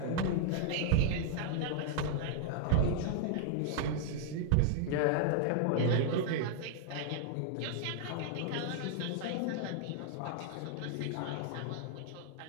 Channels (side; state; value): both; different; correlation -0.01